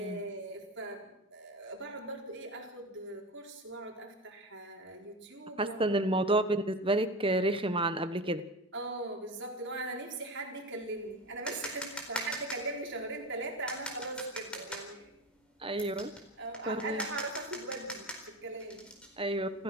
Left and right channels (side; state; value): both; normal; correlation 0.26